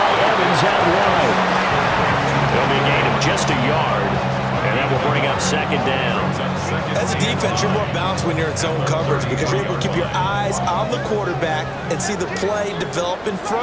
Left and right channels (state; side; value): identical; both; correlation 1.00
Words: Evans out wide. There'll be a gain of just a yard, and that will bring up 2nd down. As a defense, you're more balanced when you're in zone coverage because you're able to keep your eyes on the quarterback and see the play develop in